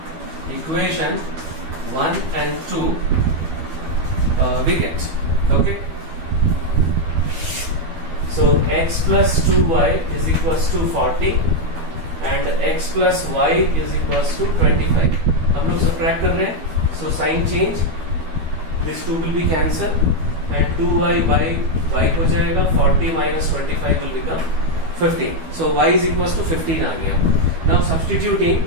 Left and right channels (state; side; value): late; left; 12 ms